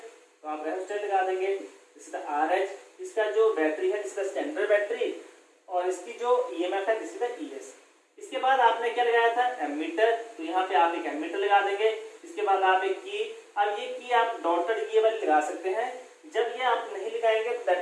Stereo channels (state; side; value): identical; both; correlation 1.00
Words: तो आप रेहोस्टेट लगा देंगे, दिस इज द RH, इसका जो बैटरी है this is the standard battery और इसकी जो EMF है दिस इज द ES। इसके बाद आपने क्या लगाया था एमीटर, तो यहाँ पे आप एक एमीटर लगा देंगे। इसके बाद आप एक की, अब ये की आप डॉटेड ये वाली लगा सकते हैं, जब ये आप नहीं लगाएंगे तो